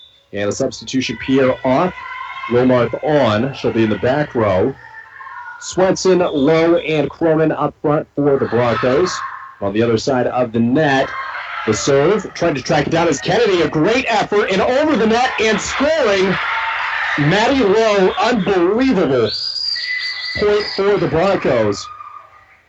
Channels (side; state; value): both; identical; correlation 1.00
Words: And a substitution. Pierre off. Wilmarth on. She'll be in the back row. Swenson, Lowe, and Cronin up front for the Broncos. On the other side of the net, the serve. Trying to track it down is Kennedy. A great effort. And over the net and scoring. Maddie Lowe. Unbelievable. Point for the Broncos.